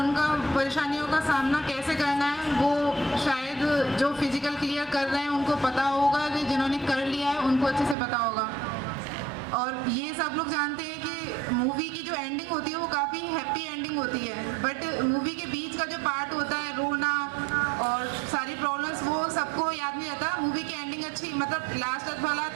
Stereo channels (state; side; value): drops out; left; at 8.0 s